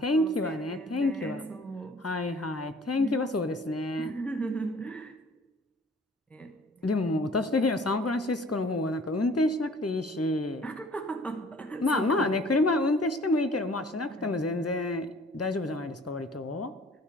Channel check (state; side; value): normal; both; correlation 0.52